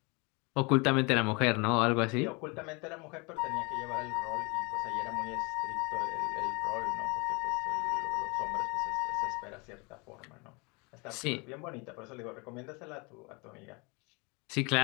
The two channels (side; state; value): right; quieter; 29.1 dB